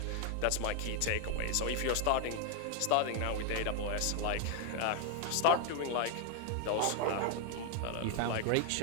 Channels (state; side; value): different; both; correlation 0.00